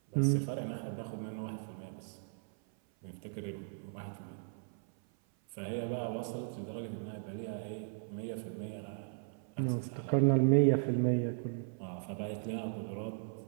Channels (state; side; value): silent; left; 53 dB below the other